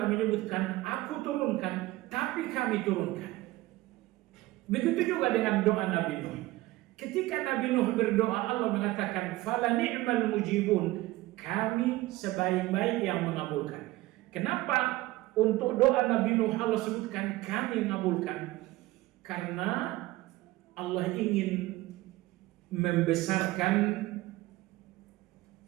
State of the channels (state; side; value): quieter; left; 18.4 dB